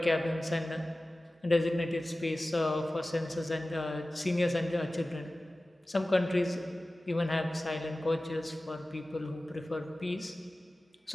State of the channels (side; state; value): both; normal; correlation 0.97